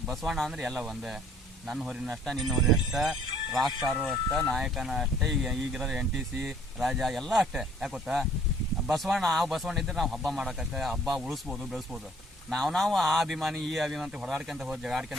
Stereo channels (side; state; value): both; normal; correlation 0.58